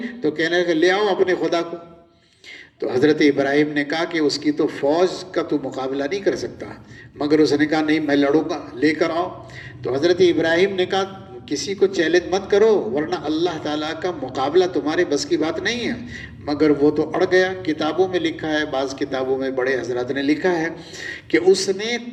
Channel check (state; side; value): identical; both; correlation 1.00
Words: تو کہنے لگا لے آؤ اپنے خدا کو۔ تو حضرت ابراہیم نے کہا کہ اس کی تو فوج کا تو مقابلہ نہیں کر سکتا، مگر اس نے کہا نہیں میں لڑوں گا، لے کر آؤ۔ تو حضرت ابراہیم نے کہا کسی کو چیلنج مت کرو ورنہ اللہ تعالیٰ کا مقابلہ تمہارے بس کی بات نہیں ہے، مگر وہ تو اڑ گیا۔ کتابوں میں لکھا ہے، بعض کتابوں میں بڑے حضرات نے لکھا ہے کہ اس نے